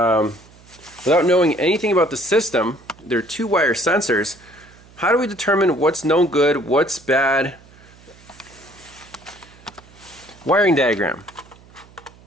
knowing anything about the system, there are two wire sensors. How do we determine what's no good, what's bad? Wiring diagram.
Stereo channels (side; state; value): right; noise; hum, 25 dB below the sound